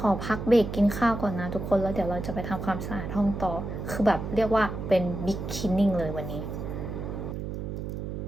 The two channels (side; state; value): right; noise; hum, 5 dB below the sound